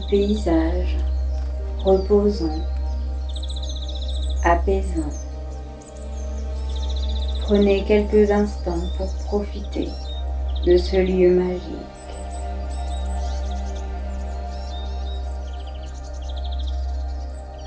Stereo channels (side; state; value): both; identical; correlation 1.00